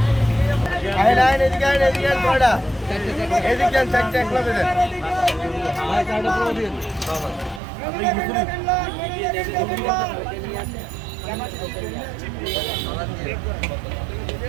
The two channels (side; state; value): left; drops out; at 7.6 s